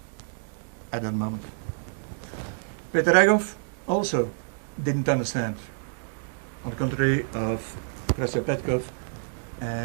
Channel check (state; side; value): silent; left; digital silence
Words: at that moment. Peter Ragov also didn't understand, on the contrary of Krøstьo Petkov